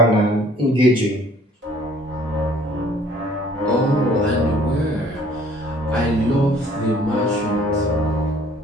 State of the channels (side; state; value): both; normal; correlation 0.56